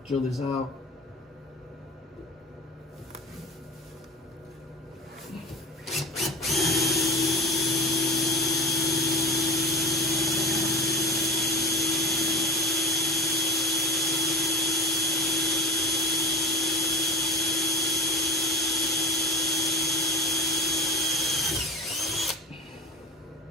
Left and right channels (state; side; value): normal; both; correlation 0.33